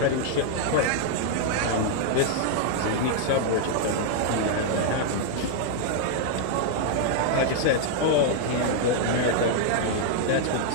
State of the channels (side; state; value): both; different; correlation -0.01